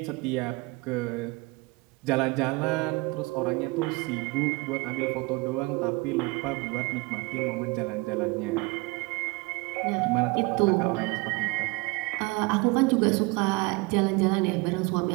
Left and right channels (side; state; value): left; quieter; 25.8 dB